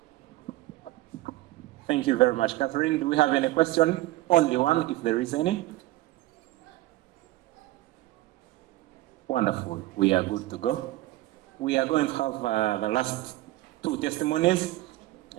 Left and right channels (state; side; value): quieter; left; 17.3 dB